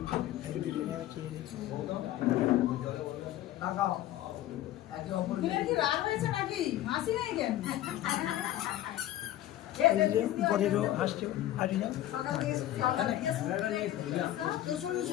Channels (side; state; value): right; quieter; 13.7 dB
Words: পরেরও হাসছে হাসি যাও।